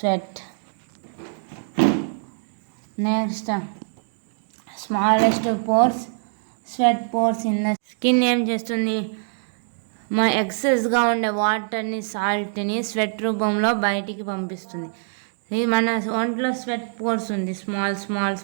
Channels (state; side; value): silent; left; digital silence